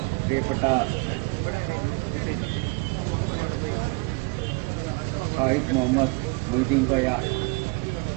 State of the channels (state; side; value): quieter; left; 29.7 dB